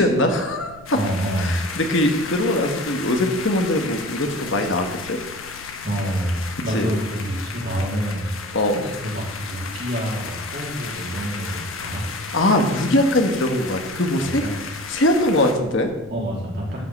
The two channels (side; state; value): left; noise; rumble, 21 dB below the sound